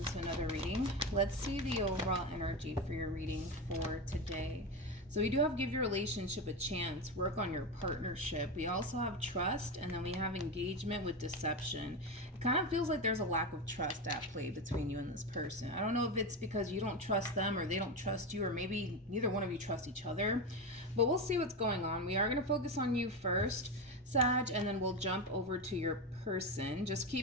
to another reading. Let's see the overall energy for your reading for today. So we do have give your relationship a chance, work on your partnership. We also have trust, and then we have engagement with deception. It kind of feels like there's a lack of trust at play between you and this person. I don't know if it's because you don't trust them or they don't trust you, or maybe neither one of you trust each other, but we'll see what's going on. We are going to focus on you first, Sag, and then we'll jump over to your person. Just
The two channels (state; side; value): normal; both; correlation 0.17